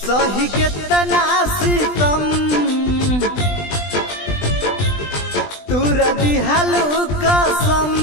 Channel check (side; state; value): right; late; 20 ms